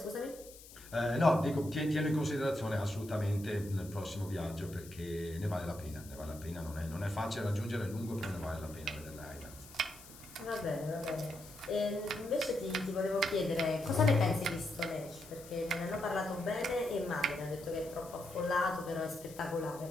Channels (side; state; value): left; noise; hiss, 18 dB below the sound